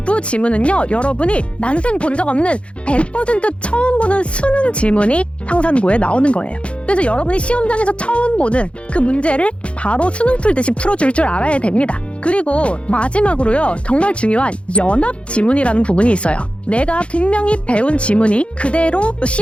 지문은요, 여러분이 난생 본 적 없는 100% 처음 보는 수능 지문이 상산고에 나오는 거예요. 그래서 여러분이 시험장에서 처음 보는 그 문제를 바로 수능 풀듯이 풀어줄 줄 알아야 됩니다. 그리고 마지막으로요, 정말 중요한 연합 지문이라는 부분이 있어요. 내가 분명히 배운 지문이 그대로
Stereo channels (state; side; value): late; right; 0.060 ms